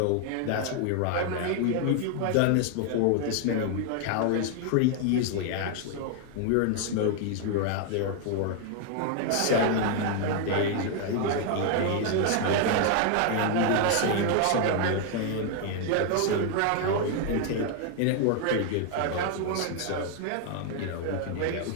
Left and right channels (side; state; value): both; different; correlation 0.00